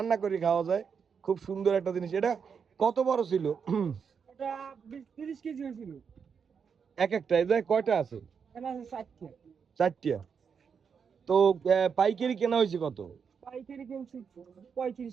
করে খাওয়া যায়। খুব সুন্দর একটা জিনিস। এটা কত বড় ছিল? এটা 30 কেজি হয়েছিল। এক একটা এটা কয়টা আছে? এটা আছে 4টা। 4টা। তো পাইকারি কেনা হয়েছে কত? পাইকারি কিনছি 35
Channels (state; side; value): quieter; left; 6.5 dB